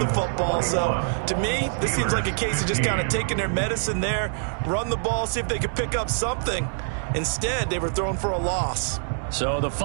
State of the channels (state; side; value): silent; left; digital silence